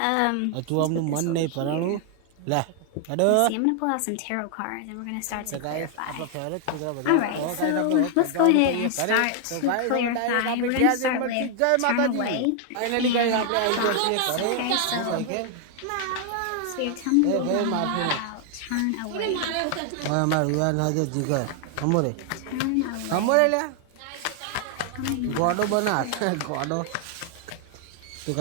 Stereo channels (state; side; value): different; both; correlation 0.00